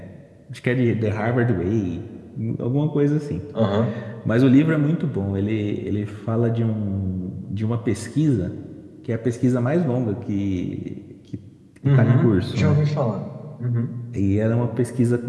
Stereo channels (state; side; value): identical; both; correlation 1.00